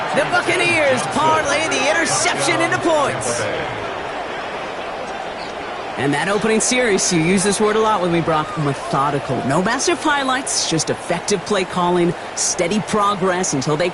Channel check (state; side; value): identical; both; correlation 1.00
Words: The Buccaneers parlay the interception into points. And that opening series, you use this word a lot with me, Brock, methodical. No massive highlights, just effective play calling, steady progress until they